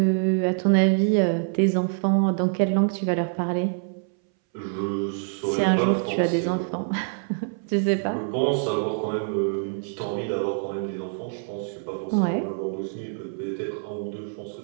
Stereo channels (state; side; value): silent; left; 61 dB below the other